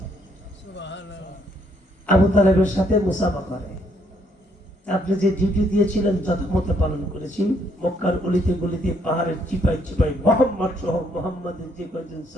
আবু তালেবের সাথে মুসাফা করে। আপনি যে ডিউটি দিয়েছিলেন যথামতো পালন করেছি। মক্কার গলিতে গলিতে পাহাড়ের চিপাই চিপাই মোহাম্মদ সহ মোহাম্মদের যে কয়েকজন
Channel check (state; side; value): normal; both; correlation 0.70